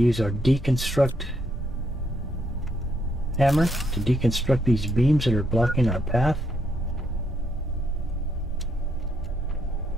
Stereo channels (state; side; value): normal; both; correlation 0.76